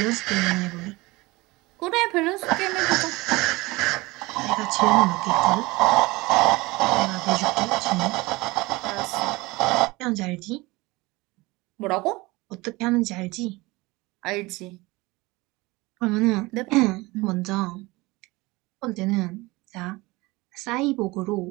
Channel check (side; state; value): left; quieter; 22.2 dB